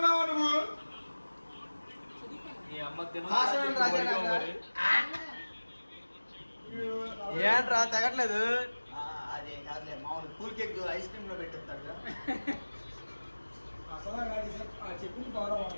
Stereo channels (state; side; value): inverted; both; correlation -1.00